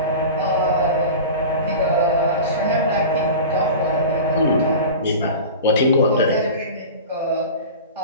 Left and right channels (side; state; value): both; inverted; correlation -0.33